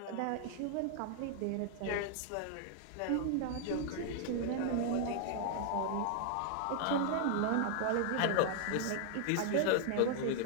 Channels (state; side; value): different; both; correlation 0.00